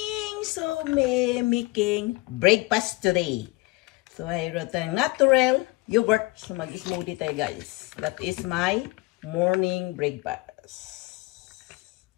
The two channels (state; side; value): quieter; right; 22.8 dB